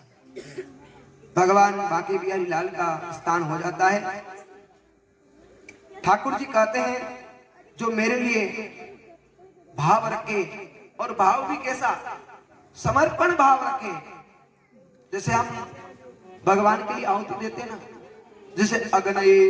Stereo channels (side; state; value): both; identical; correlation 1.00